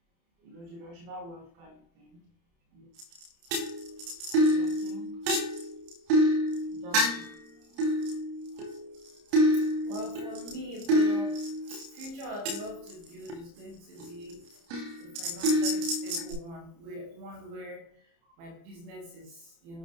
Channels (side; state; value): left; late; 30 ms